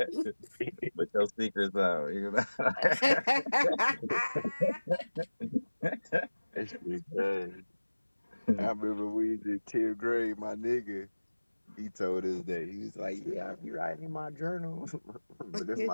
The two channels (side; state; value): both; inverted; correlation -1.00